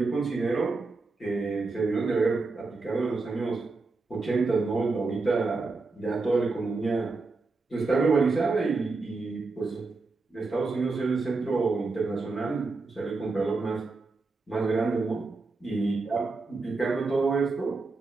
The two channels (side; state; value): left; quieter; 3.8 dB